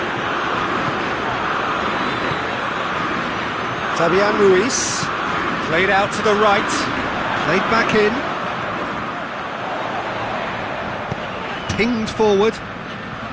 Fabian Ruiz, played out to the right, played back in. Pinged forward.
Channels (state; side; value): identical; both; correlation 1.00